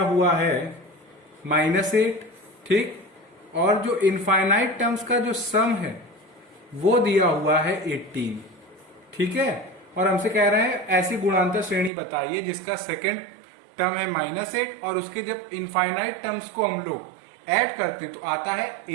हुआ है -8, ठीक, और जो इनफाइनाइट टर्म्स का जो सम है वो दिया हुआ है 18, ठीक है। और हमसे कह रहे हैं ऐसी गुणांतर श्रेणी बताइए जिसका सेकंड टर्म है -8 और उसके जब इनफाइनाइट टर्म्स को हम लोग ऐड करते तो आता है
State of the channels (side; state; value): left; drops out; at 11.9 s